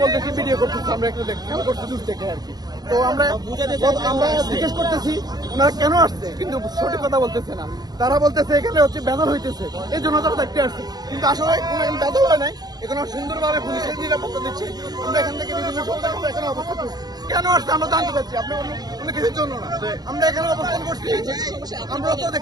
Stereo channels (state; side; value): late; left; 0.19 ms